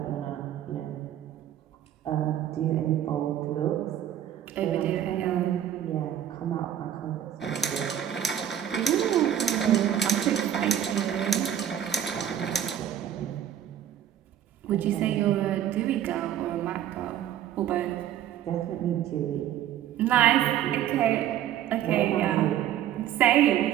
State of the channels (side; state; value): left; quieter; 10.8 dB